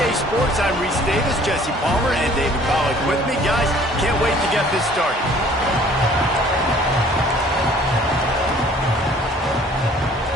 Sports, I'm Reese Davis, Jesse Palmer, and David Pollack with me. Guys, can't wait to get this started.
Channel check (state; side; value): normal; both; correlation 0.54